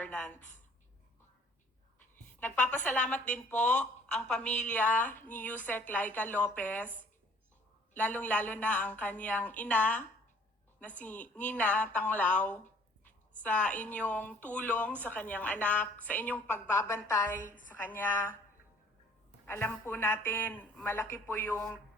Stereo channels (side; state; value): both; normal; correlation 0.55